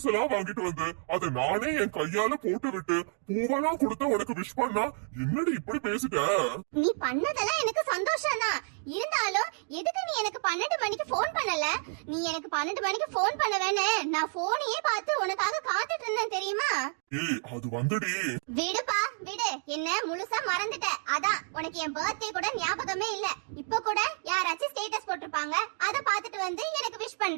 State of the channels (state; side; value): silent; left; 56 dB below the other